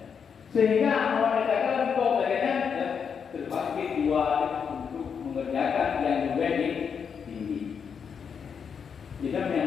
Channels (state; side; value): quieter; right; 6.7 dB